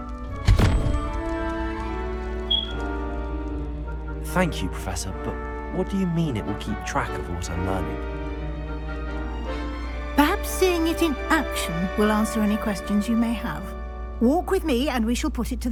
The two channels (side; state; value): both; identical; correlation 1.00